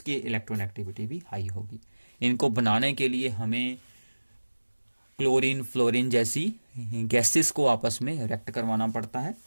इलेक्ट्रॉनेगेटिविटी भी हाई होगी। इनको बनाने के लिए हमें क्लोरीन फ्लोरीन जैसी गैसेस को आपस में रिएक्ट करवाना पड़ता है।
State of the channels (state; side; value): inverted; both; correlation -1.00